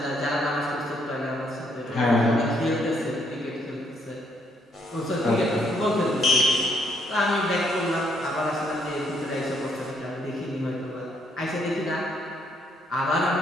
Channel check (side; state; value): both; normal; correlation 0.71